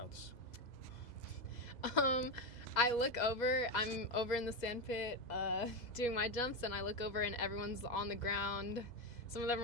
I look over, I'm over in the sand pit doing my jumps, and I look over and everyone's on the ground. Some of them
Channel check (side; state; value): right; late; 2.0 ms